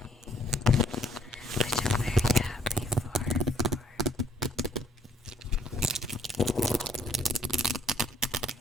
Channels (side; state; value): both; normal; correlation 0.65